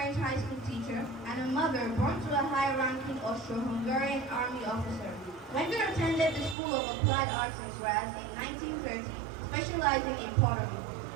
high school teacher and a mother born to a high-ranking Austro-Hungarian army officer. Wenger attended the School of Applied Arts in Graz in 1930, specializing in pottery.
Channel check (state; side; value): drops out; left; at 6.6 s